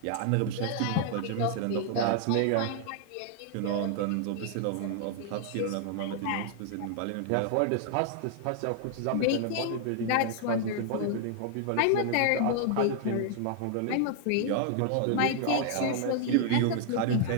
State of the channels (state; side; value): different; both; correlation 0.00